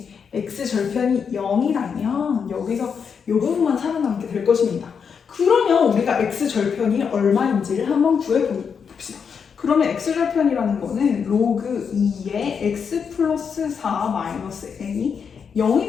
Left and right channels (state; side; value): quieter; right; 6.5 dB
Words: x절편이 0이라면 여기서 이 부분만 살아남게 될 것입니다. 그러면 우리가 x절편이 얼마인지를 한번 구해봅시다. 그러면 x절편이라는 거는 로그 2의 x 플러스 4 마이너스 n이 0이